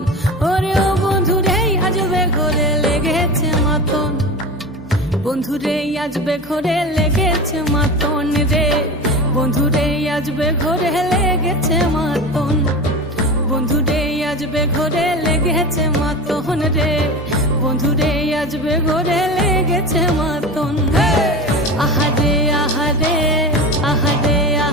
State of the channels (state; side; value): normal; both; correlation 0.29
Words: ওরে ও বন্ধুরে আজবে ঘরে লেগেছে মাতন বন্ধুরে আজবে ঘরে লেগেছে মাতন রে বন্ধুরে আজবে ঘরে লেগেছে মাতন বন্ধুরে আজবে ঘরে লেগেছে মাতন রে বন্ধুরে আজবে ঘরে লেগেছে মাতন আহারে আহারে আহারে